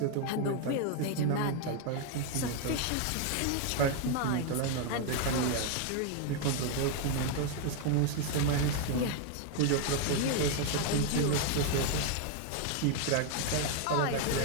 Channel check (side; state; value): both; different; correlation 0.00